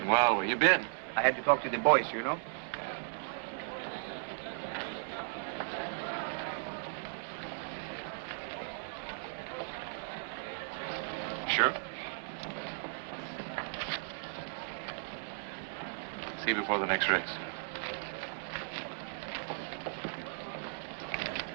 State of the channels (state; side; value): silent; left; digital silence